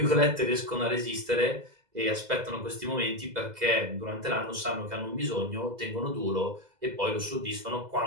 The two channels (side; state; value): left; late; 2.0 ms